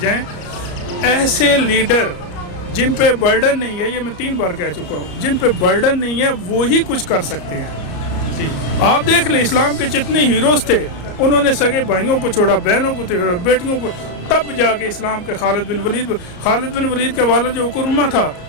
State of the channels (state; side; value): late; right; 34 ms